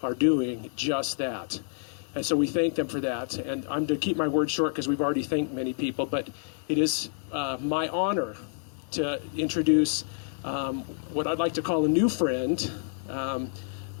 are doing just that. And so we thank them for that. And I'm to keep my word short because we've already thanked many people, but it is my honor to introduce what I'd like to call a new friend,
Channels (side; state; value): right; silent; 59 dB below the other